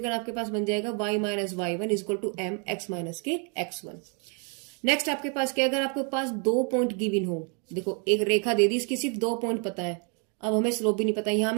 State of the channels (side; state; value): left; quieter; 37.2 dB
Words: आपके पास बन जाएगा y minus y1 is equal to m x minus के x1। नेक्स्ट आपके पास क्या, अगर आपके पास 2 पॉइंट गिवन हो, देखो एक रेखा दे दी, इसकी सिर्फ 2 पॉइंट पता है, अब हमें स्लोप भी नहीं पता। यहां